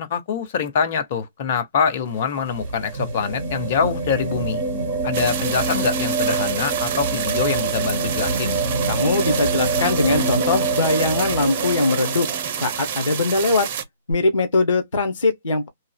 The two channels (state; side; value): inverted; both; correlation -0.52